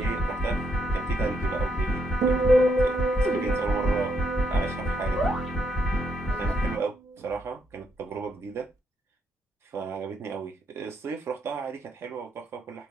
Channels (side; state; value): both; normal; correlation 0.76